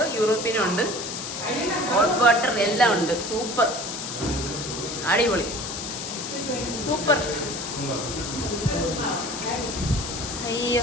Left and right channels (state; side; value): noise; left; hiss, 6 dB below the sound